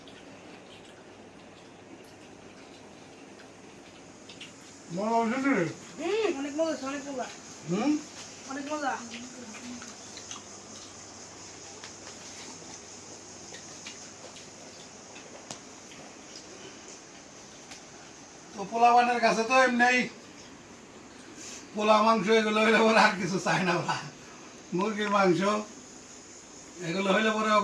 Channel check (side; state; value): both; identical; correlation 1.00